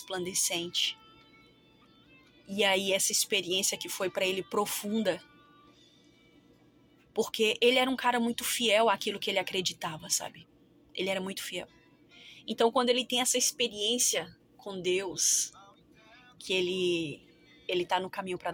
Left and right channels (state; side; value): identical; both; correlation 1.00